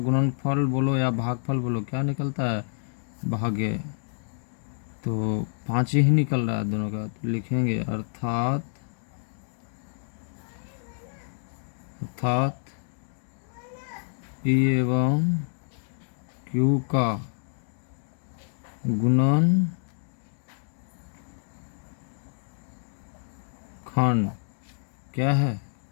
बोलो या भागफल बोलो, क्या निकलता है, भाग्य, तो 5 ही निकल रहा है दोनों का। तो लिखेंगे अर्थात p एवं q का गुणनखंड क्या है,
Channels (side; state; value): right; silent; digital silence